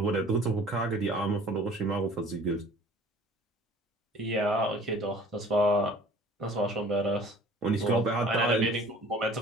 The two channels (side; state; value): both; normal; correlation 0.50